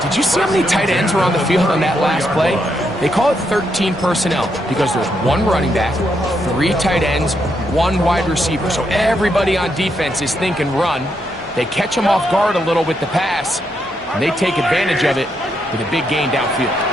did you see how many tight ends were on the field on that last play? They call it 13 personnel because there's 1 running back, 3 tight ends, 1 wide receiver. So everybody on defense is thinking run. They catch them off guard a little with the pass, and they take advantage of it with a big gain downfield.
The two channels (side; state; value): both; normal; correlation 0.79